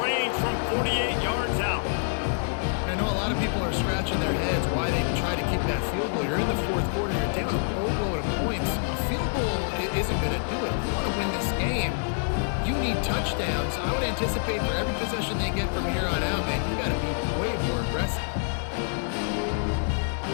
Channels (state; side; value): silent; right; digital silence